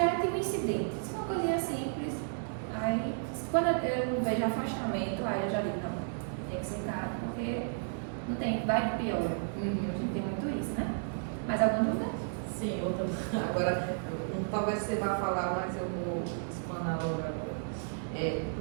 e o incidente. Isso é uma coisinha simples. Aí quando eu vejo afastamento, aí eu já digo, não, tem que sentar, porque não tem, vai de pior. A gente tem muito isso, né? Mais alguma dúvida? Sim, outra. Agora, talvez você vá falar, mas eu vou explanar logo agora.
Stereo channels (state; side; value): silent; left; digital silence